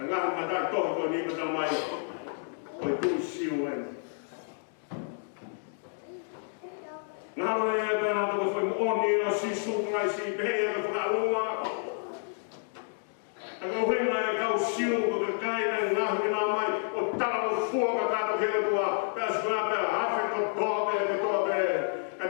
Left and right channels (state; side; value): silent; right; digital silence